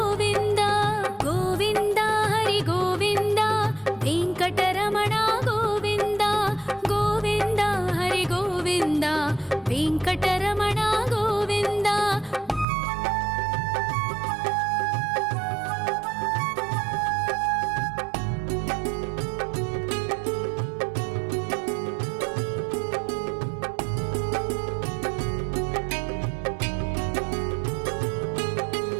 ಗೋವಿಂದ ಹರಿ ಗೋವಿಂದ, ವೆಂಕಟರಮಣ ಗೋವಿಂದ, ಗೋವಿಂದ ಹರಿ ಗೋವಿಂದ, ವೆಂಕಟರಮಣ ಗೋವಿಂದ.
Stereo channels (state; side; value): drops out; left; at 12.7 s